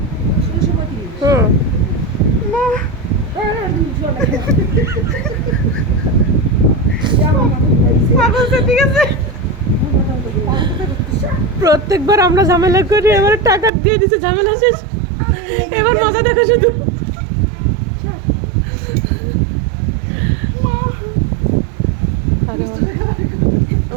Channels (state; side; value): drops out; left; at 13.7 s